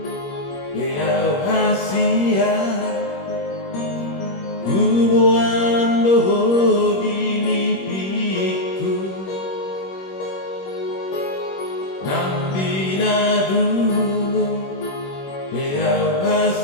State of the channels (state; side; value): late; right; 21 ms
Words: Beau hasia Hubungan doho di mimpiku Nanti dulu Beau